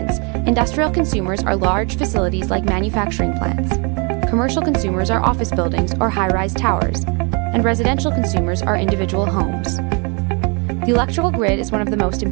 industrial consumers are large facilities like manufacturing plants. Commercial consumers are office buildings or high-rise towers, and residential consumers are individual homes. The electrical grid is one of the most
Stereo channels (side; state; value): left; quieter; 33.4 dB